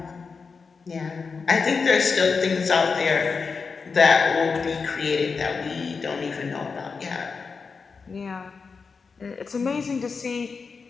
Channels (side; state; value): right; quieter; 5.0 dB